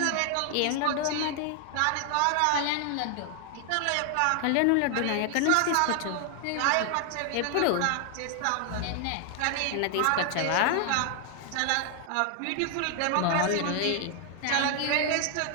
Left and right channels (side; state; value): both; different; correlation 0.00